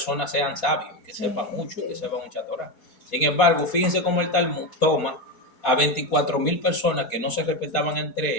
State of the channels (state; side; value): late; right; 4.3 ms